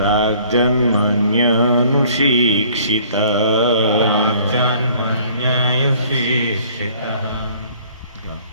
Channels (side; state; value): both; inverted; correlation -0.56